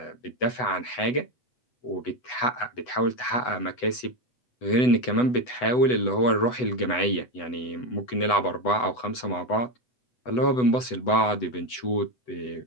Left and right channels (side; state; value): right; late; 8.0 ms